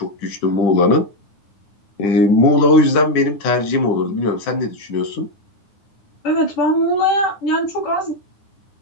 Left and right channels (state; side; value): late; right; 9.7 ms